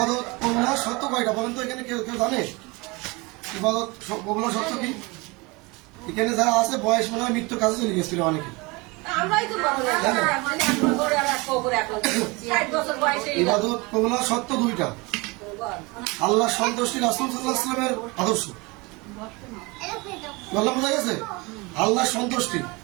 কবুল হওয়ার শর্ত কয়টা বলেন তো? এখানে কেউ কেউ জানে ইবাদত কবুল হওয়ার শর্ত কি? এখানে যারা আছে বয়স মনে হয় মৃত্যুর কাছে চলে গেছিল অনেকে। ইবাদত কবুল হওয়ার শর্ত দুইটা। আল্লাহ সন্তুষ্টি, রাসূল সাল্লাল্লাহু আলাইহি ওয়াসাল্লামের আদর্শ। বললাম বোঝা গেছে? আল্লাহ সন্তুষ্টি।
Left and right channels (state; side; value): quieter; left; 25.8 dB